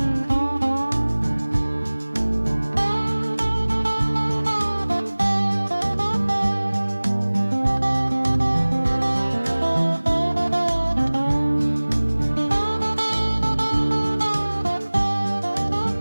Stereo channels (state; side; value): inverted; both; correlation -1.00